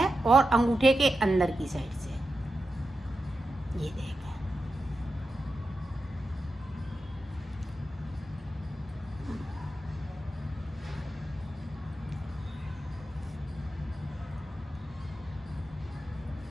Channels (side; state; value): both; normal; correlation 0.90